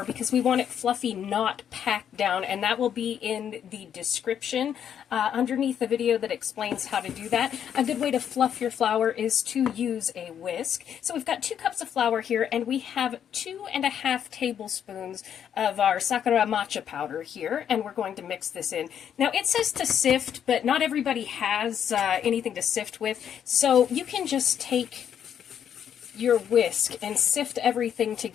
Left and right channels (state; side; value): quieter; right; 8.9 dB